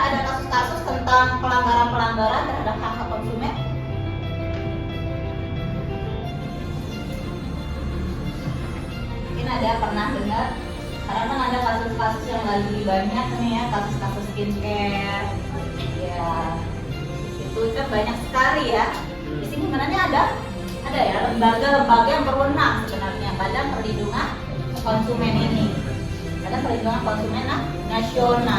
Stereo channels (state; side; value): identical; both; correlation 1.00